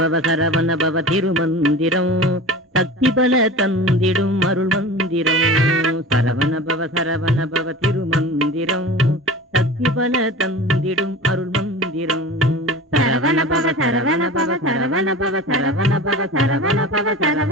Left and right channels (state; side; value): normal; both; correlation 0.35